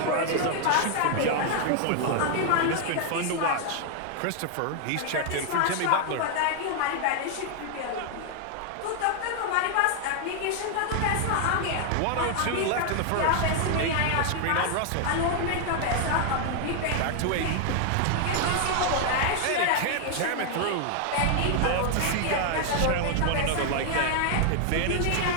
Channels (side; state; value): both; different; correlation 0.00